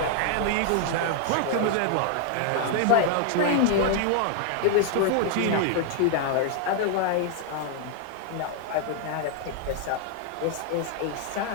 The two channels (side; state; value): both; different; correlation 0.00